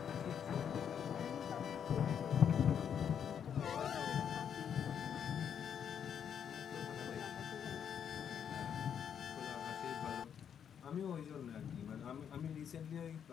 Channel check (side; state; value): right; quieter; 8.3 dB